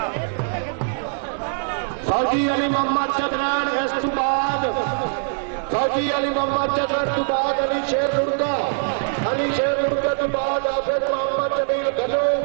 फौजी अली मोहम्मद चदराड़ इस तो बाद फौजी अली मोहम्मद चदराड़ तो बाद अली शेर लुड़का तो बाद हाफिज मोहम्मद जमील घनो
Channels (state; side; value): silent; left; digital silence